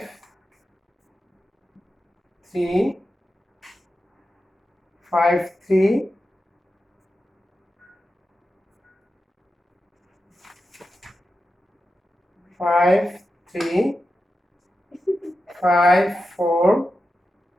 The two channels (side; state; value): both; normal; correlation 0.90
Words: 3, 5, 3, 5, 3, 5, 4,